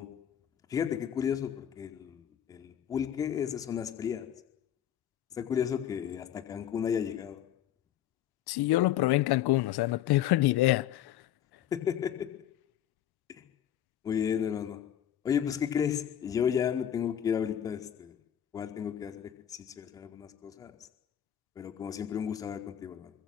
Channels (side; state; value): right; quieter; 10.6 dB